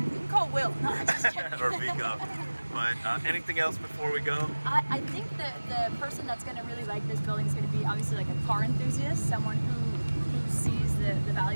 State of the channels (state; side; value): inverted; both; correlation -1.00